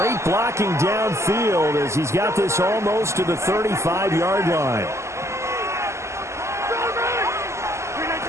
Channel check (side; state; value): left; late; 0.13 ms